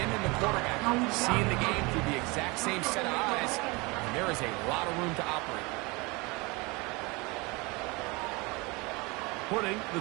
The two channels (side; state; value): left; quieter; 26.1 dB